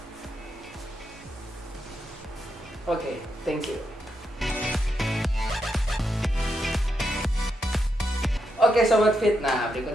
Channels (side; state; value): both; normal; correlation 0.83